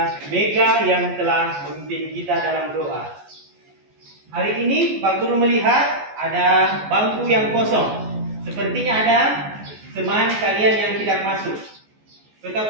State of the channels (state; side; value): late; left; 14 ms